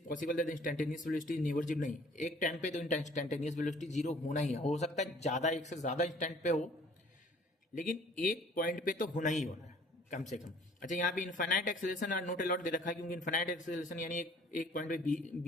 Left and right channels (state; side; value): normal; both; correlation 0.54